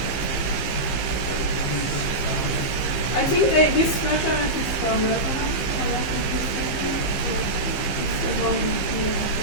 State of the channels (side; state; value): right; late; 15 ms